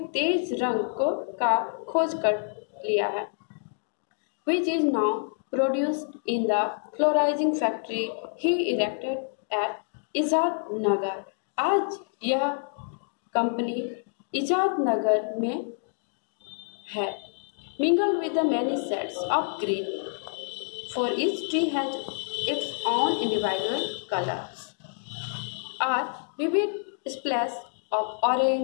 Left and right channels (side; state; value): right; silent; digital silence